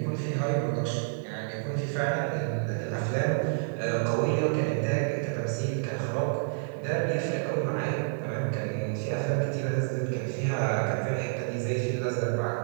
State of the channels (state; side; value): silent; left; digital silence